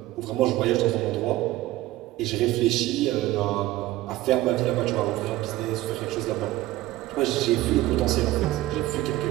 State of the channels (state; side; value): quieter; left; 16.6 dB